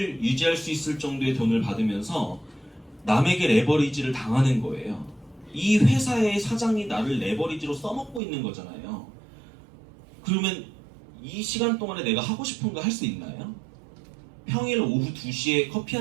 유지할 수 있을 정도의 돈을 받으면서 남에게 레버리지를 당하는 거예요. 이 회사의 사장이 나를 레버리지로 써먹고 있는 거잖아요. 그러면 이 시간 동안에 내가 하고 싶은 거 할 수 있나요? 평일 오후 2시에 커피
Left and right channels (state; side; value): drops out; left; at 8.2 s